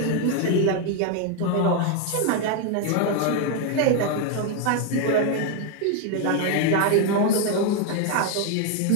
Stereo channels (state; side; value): different; both; correlation 0.01